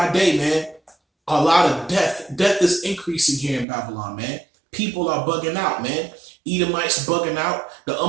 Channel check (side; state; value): left; drops out; at 3.7 s